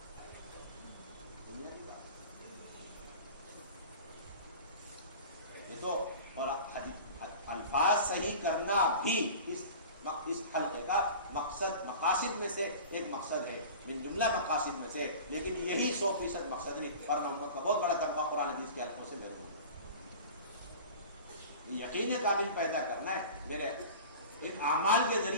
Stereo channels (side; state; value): both; inverted; correlation -0.38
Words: یہ تو اور الفاظ صحیح کرنا بھی اس حلقے کا مقصد، مقاصد میں سے ایک مقصد ہے، من جملہ مقاصد میں سے، لیکن یہی 100% مقصد نہیں، ورنہ امت کا بہت بڑا طبقہ قرآن حدیث کے حلقوں سے محروم ہے۔ یقین کامل پیدا کرنا ہے، میرے ان اعمال کے